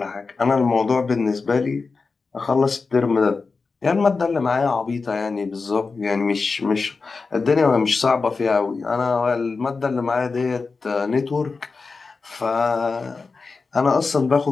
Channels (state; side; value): quieter; right; 4.4 dB